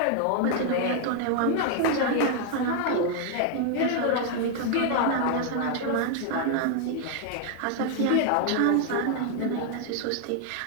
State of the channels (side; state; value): both; different; correlation 0.00